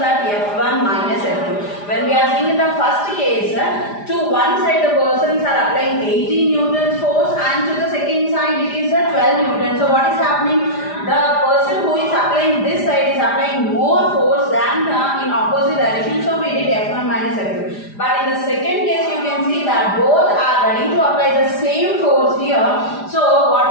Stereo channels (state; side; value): late; right; 4.9 ms